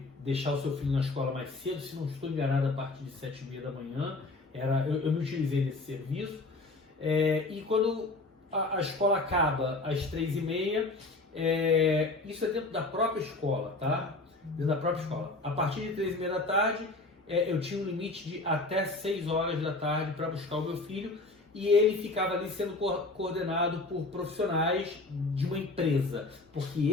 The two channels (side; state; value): right; quieter; 3.1 dB